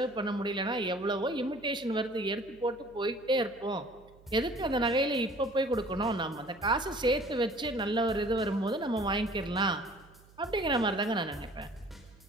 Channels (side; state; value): right; noise; hum, 26 dB below the sound